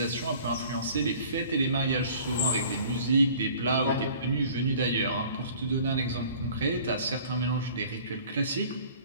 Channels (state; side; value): inverted; both; correlation -0.49